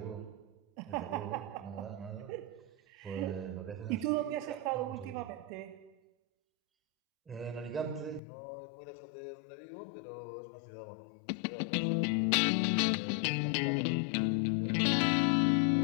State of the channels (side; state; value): right; drops out; at 8.2 s